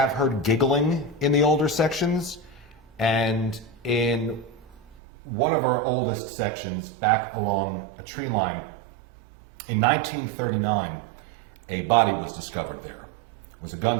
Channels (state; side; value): drops out; left; at 5.0 s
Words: heard giggling in the older sections, and in one of our oldest sections back along a tree line, in 1939, a body was discovered there. It was a